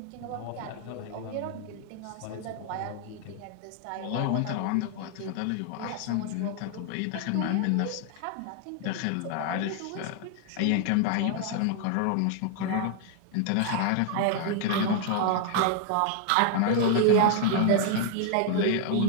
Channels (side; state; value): both; different; correlation 0.00